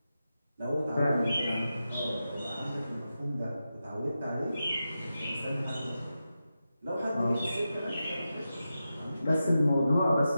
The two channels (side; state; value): both; inverted; correlation -0.91